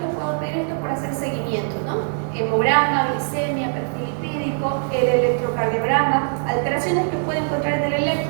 puedo pedir esto para hacer seguimiento, ¿no? Hemograma, glicemia, perfil lipídico, el electrocardiograma, alteraciones que puede encontrar en el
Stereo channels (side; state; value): left; silent; digital silence